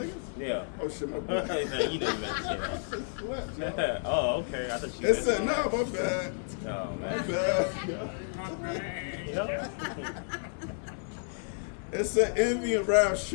Yeah. Oh shit, my bad. You know you meant to say Slept, yo. that. Oh, okay. I thought you It meant said, nah, my bad. Oh, My man. bad. Yeah. My bad. Yeah. It said envy and wrath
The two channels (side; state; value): right; silent; 57 dB below the other